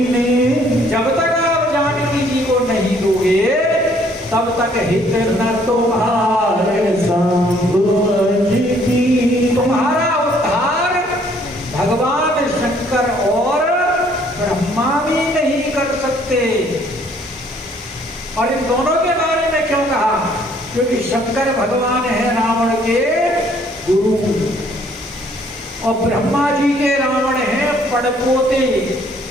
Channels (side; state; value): both; normal; correlation 0.62